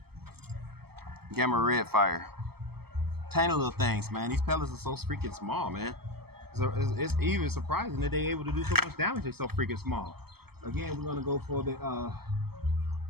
Gamma Red Fire. Tiny little things, man. These pellets are so freaking small, man. So it's even surprising that they're able to do so much damage. They're so freaking small. Again, we're going to go for the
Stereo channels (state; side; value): late; left; 0.96 ms